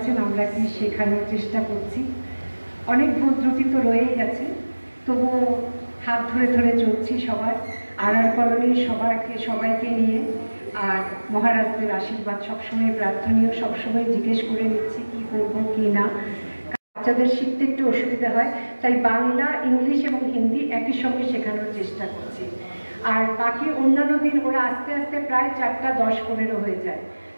আমরা কি শেখানোর চেষ্টা করছি। অনেক ভুল ত্রুটি তো রয়েই গেছে, তবুও হাত ধরে ধরে চলছি সবার আড়ার কলোনির সবাইকে নিয়ে। আর মহারাজদের আশীর্বাদ সবসময় প্রার্থনীয়, সবসময় জিজ্ঞেস করে নিচ্ছি কি করবো কি না। বাচ্চাদের শিখতে একটু অসুবিধা হয়, তাই বাংলা, ইংলিশ এবং হিন্দি একই সঙ্গে শেখানোর চেষ্টা করছি। আর বাকি অন্যান্য দিন ওরা আস্তে আস্তে প্রায় 4টা 10-15 হয়ে যায়।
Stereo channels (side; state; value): both; inverted; correlation -1.00